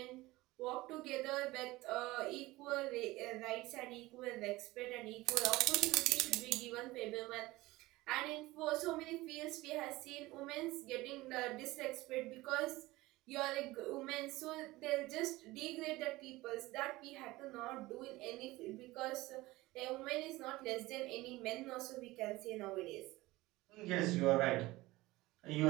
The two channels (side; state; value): left; quieter; 19.4 dB